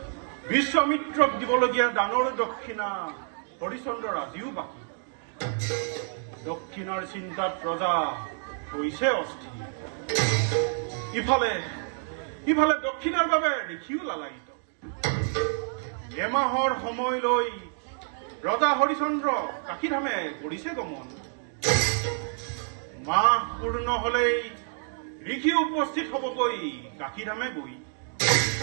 বিশ্বামিত্ৰক দিবলগীয়া দানৰ দক্ষিণা হৰিশ্চন্দ্ৰৰ আজিও বাকী। দক্ষিণাৰ চিন্তাত ৰজা হৈছে অস্থিৰ। ইফালে দক্ষিণাৰ বাবে দেখিও লালায়িত। এমাহৰ সময় লৈ ৰজা হৰিশ্চন্দ্ৰ কাশীধামে কৰিছে গমন। মাহ পূৰ্ণ হলেই ঋষি উপস্থিত হবগৈ কাশীধামে গৈ।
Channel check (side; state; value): left; silent; 59 dB below the other